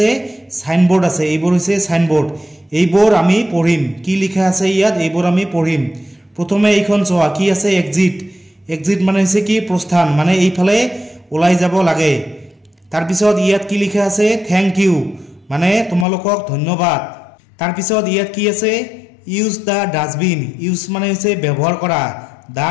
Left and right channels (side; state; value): right; drops out; at 16.1 s